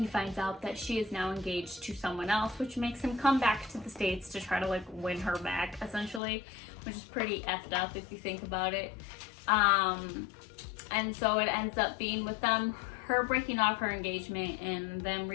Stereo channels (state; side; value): drops out; right; at 6.2 s